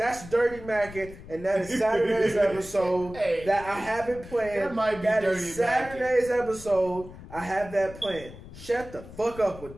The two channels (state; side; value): noise; left; rumble, 16 dB below the sound